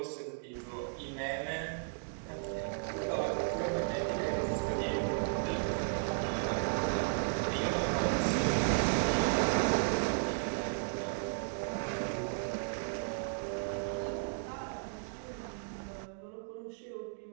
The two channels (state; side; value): silent; left; digital silence